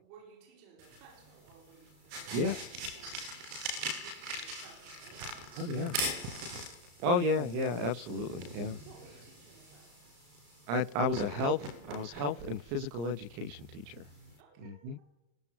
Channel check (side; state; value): left; late; 34 ms